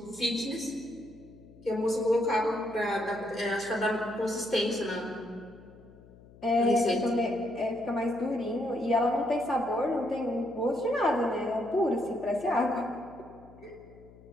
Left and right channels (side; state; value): left; noise; hum, 22 dB below the sound